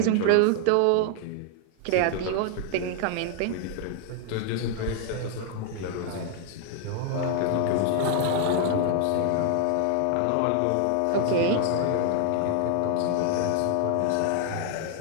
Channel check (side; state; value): both; different; correlation 0.00